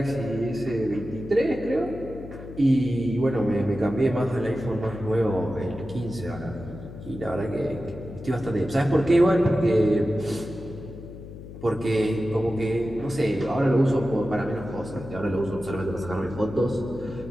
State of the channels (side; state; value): left; noise; hum, 13 dB below the sound